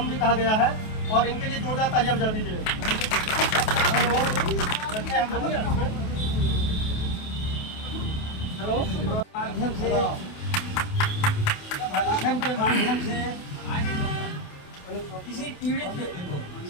भी कहा गया है, और इनके लिए जोरदार तालियां बजा दीजिए। हेलो, माध्यम से लेखन के माध्यम से किसी पीड़ित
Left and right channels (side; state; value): right; late; 28 ms